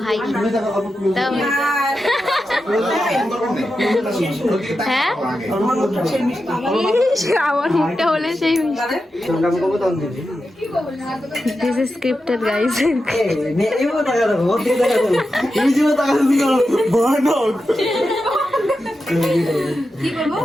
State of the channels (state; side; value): normal; both; correlation 0.90